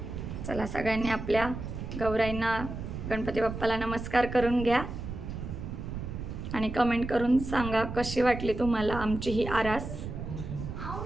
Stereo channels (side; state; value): right; noise; rumble, 7 dB below the sound